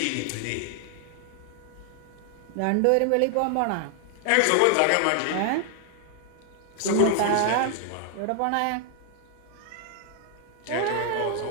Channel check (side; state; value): both; different; correlation 0.00